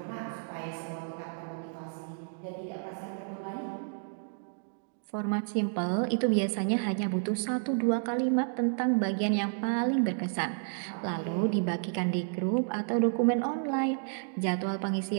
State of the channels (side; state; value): left; silent; digital silence